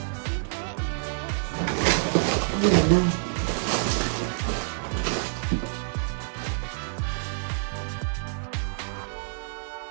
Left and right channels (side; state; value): left; silent; digital silence